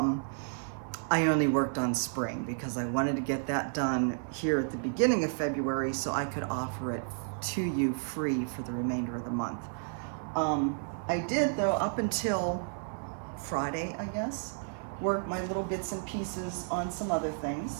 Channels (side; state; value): left; silent; 56 dB below the other